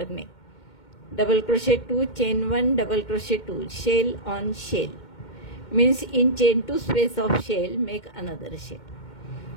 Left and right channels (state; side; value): late; right; 2.2 ms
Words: नाही. Double crochet 2, chain 1, double crochet 2, shell on shell, means in chain 2 space of shell make another shell.